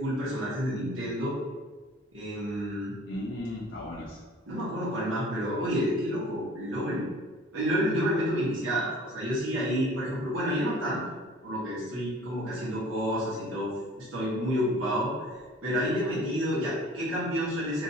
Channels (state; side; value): normal; both; correlation 0.48